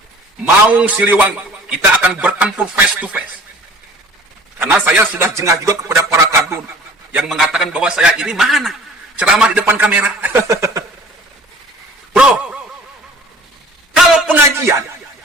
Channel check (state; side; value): normal; both; correlation 0.47